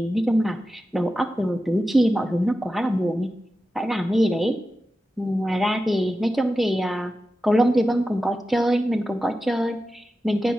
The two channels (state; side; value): normal; both; correlation 0.93